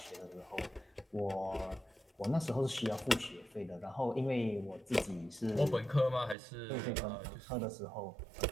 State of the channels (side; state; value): left; drops out; at 6.4 s